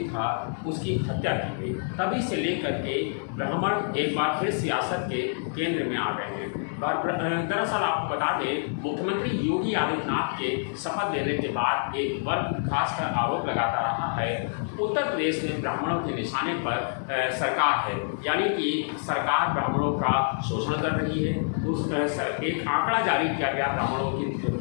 था, उसकी हत्या की गई। तभी से लेकर के ब्राह्मण एक बार फिर सियासत के केंद्र में आ गए हैं। दरअसल आपको बता दें, मुख्यमंत्री योगी आदित्यनाथ के शपथ लेने के बाद एक वर्ग खासकर आरोप लगाता रहा है, उत्तर प्रदेश में ब्राह्मणों के निशाने पर सरकार है, यानी कि सरकार ब्राह्मणों का शोषण कर रही है। एक आंकड़ा जारी किया गया ब्राह्मणों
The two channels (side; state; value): right; silent; digital silence